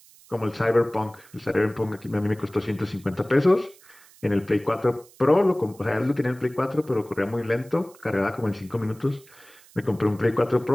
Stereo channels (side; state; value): right; noise; hiss, 25 dB below the sound